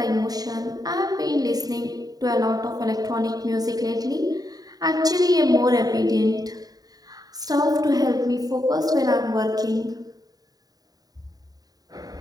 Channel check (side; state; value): left; late; 0.18 ms